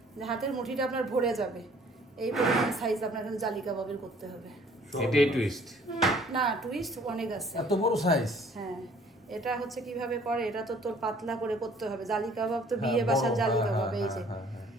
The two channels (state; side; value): normal; both; correlation 0.56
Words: যে হাতের মুঠিটা আপনার ভরে যাবে, এই পরিমাণ সাইজ আপনার কিন্তু জালি কাবাবের করতে হবে। এটাই টুইস্ট। না, টুইস্ট অনেক আছে। এত বড় সাইজ? হ্যাঁ, এটা হচ্ছে কিভাবে করে, এটা তো তোর পাতলা করে করতে হবে। জালি কাবাব তো বিয়ে বাসার জালি কাবাব, এই যে